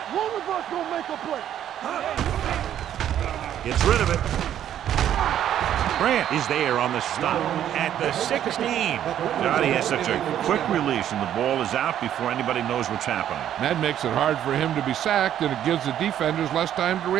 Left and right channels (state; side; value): quieter; left; 10.7 dB